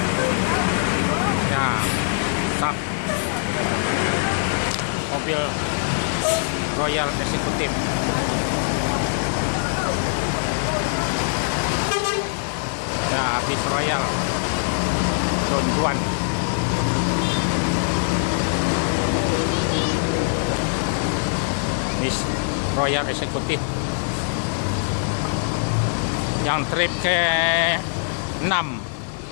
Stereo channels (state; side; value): silent; right; digital silence